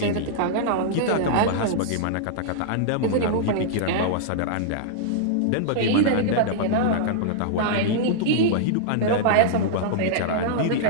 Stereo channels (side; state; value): both; different; correlation -0.02